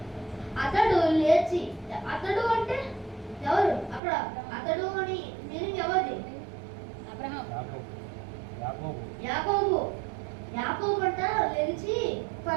అతడు లేచి, అతడు అంటే ఎవరు అక్కడ? అతడు అని మీనింగ్ ఎవరిది? అబ్రహాం. యాకోబు అంట లేచి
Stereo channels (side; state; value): left; drops out; at 4.0 s